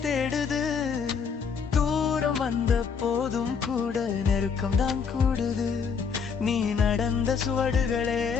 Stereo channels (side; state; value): right; quieter; 6.1 dB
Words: தேடுது. தூரம் வந்த போதும் கூட நெருக்கம் தான் கூடுது, நீ நடந்த சுவடுகளே